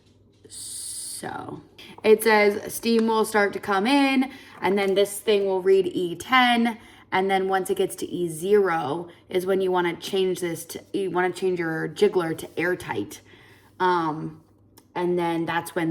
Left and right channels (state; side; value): identical; both; correlation 1.00